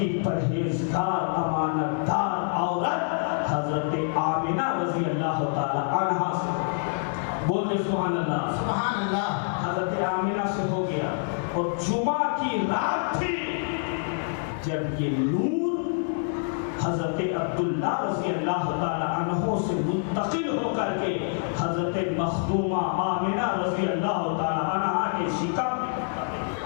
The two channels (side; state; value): right; silent; digital silence